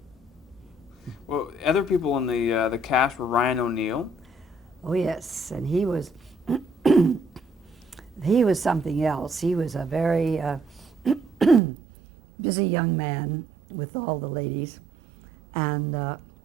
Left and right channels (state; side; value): drops out; left; at 11.6 s